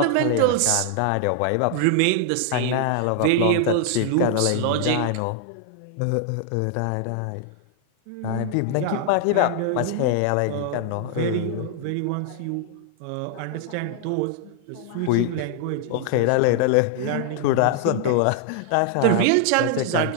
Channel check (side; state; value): both; different; correlation 0.00